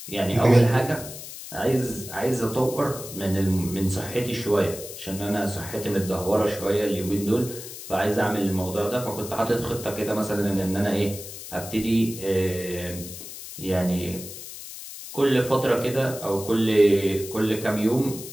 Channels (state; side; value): noise; left; hiss, 12 dB below the sound